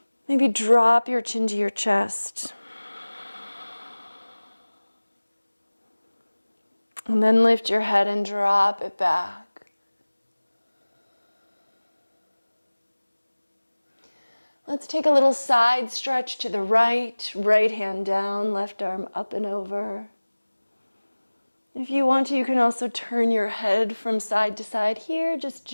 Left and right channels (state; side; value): inverted; both; correlation -1.00